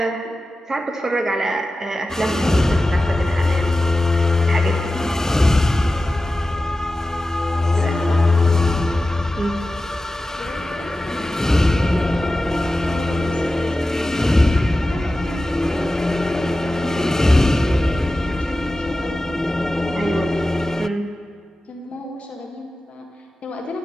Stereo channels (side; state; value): both; normal; correlation 0.94